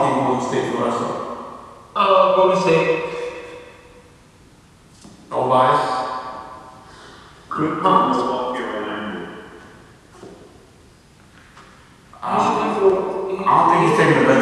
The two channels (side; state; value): both; identical; correlation 1.00